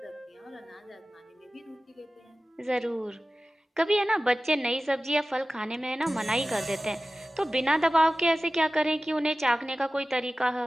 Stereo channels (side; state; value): both; normal; correlation 0.96